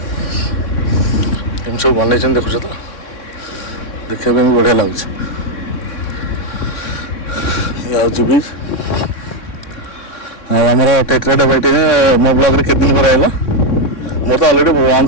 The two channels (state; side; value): late; right; 3.6 ms